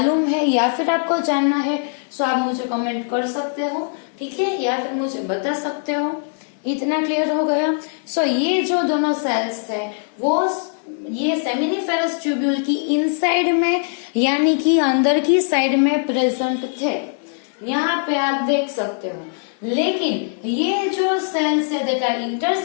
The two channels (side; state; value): right; silent; 59 dB below the other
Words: है या फिर आपको जानना है तो आप मुझे कमेंट कर सकते हो, ठीक है, या फिर मुझे बता सकते हो। इतना क्लियर हो गया। सो ये जो दोनों सेल्स है वो ये सेमिनिफेरस ट्यूब्यूल की इनसाइड में यानी कि अंदर की साइड में प्रेजेंट थे, यहाँ पे आप देख सकते हो। लेकिन ये जो सेल्स है दैट आर